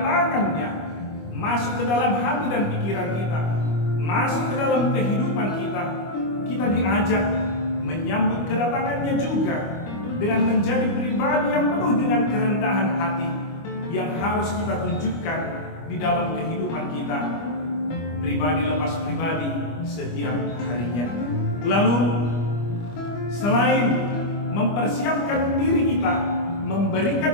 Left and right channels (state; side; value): late; right; 25 ms